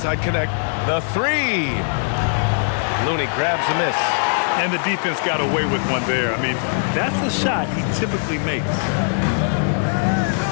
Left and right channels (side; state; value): right; silent; digital silence